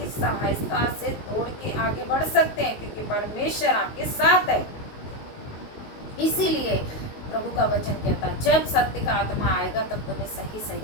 सहायता से तोड़ के आगे बढ़ सकते हैं, क्योंकि परमेश्वर आपके साथ है। इसीलिए प्रभु का वचन कहता है जब सत्य का आत्मा आएगा तब तुम्हें सही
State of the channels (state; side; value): late; right; 19 ms